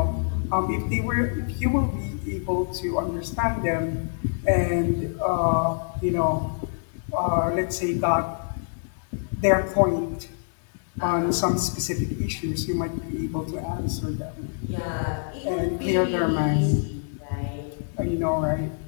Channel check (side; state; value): right; silent; 61 dB below the other